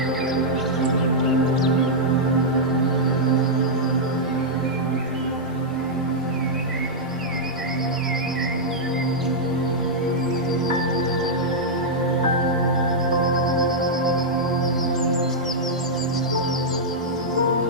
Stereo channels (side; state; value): both; normal; correlation -0.07